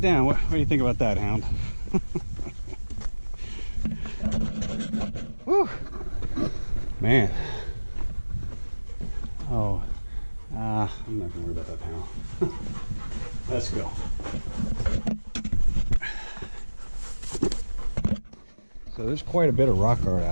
down. What do you think about that, Hound? Whew. Man. Oh, I'm not gonna worry about that panel. Let's go. So there's quite a bit of rock art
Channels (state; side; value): inverted; both; correlation -1.00